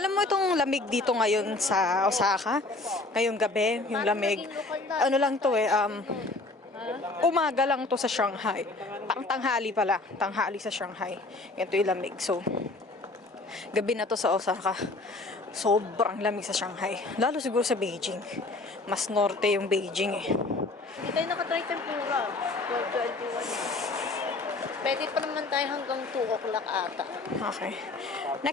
mo itong lamig dito ngayon sa Osaka? Ngayong gabi, yung lamig. Ano lang to umaga lang to sa Shanghai. Tanghali pala. Tanghali sa Shanghai. Ganito yung lamig. So, gabi na to sa Osaka. Sobrang lamig sa Shanghai. Lalo siguro sa Beijing. Mas norte yung Beijing eh. Hindi tayo nakatry tempura. 12:21. Pwede pa naman tayo hanggang 2 o'clock ata. Okay.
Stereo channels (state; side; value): quieter; right; 3.2 dB